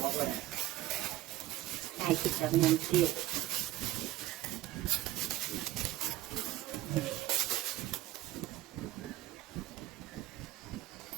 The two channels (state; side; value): quieter; left; 15.8 dB